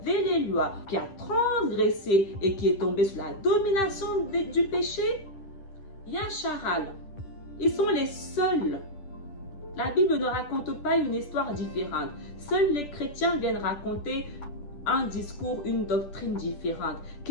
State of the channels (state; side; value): late; right; 10 ms